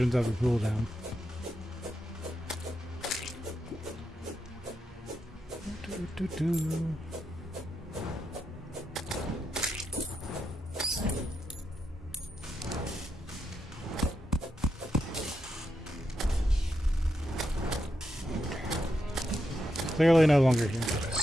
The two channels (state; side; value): normal; both; correlation 0.84